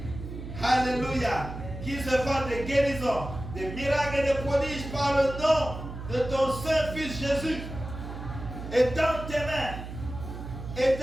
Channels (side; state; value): right; noise; hum, 9 dB below the sound